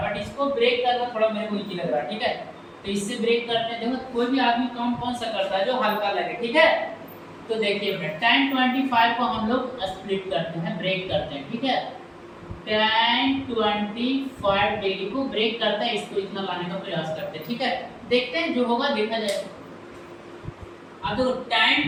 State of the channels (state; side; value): identical; both; correlation 1.00